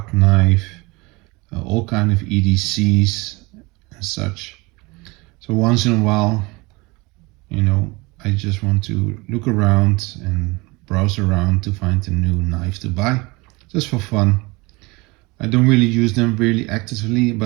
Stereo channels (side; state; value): left; quieter; 24.8 dB